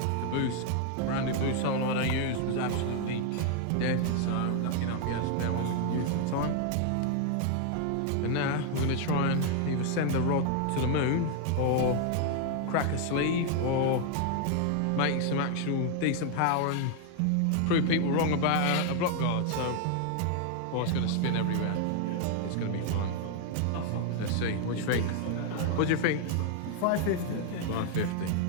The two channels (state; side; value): different; both; correlation 0.00